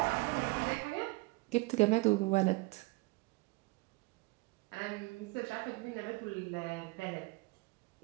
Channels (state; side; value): quieter; left; 24.5 dB